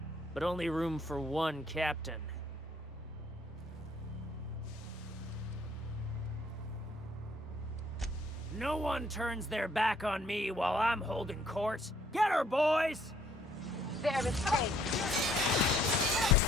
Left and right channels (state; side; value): normal; both; correlation 0.64